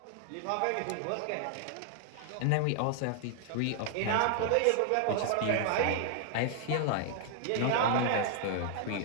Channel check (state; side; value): different; both; correlation 0.00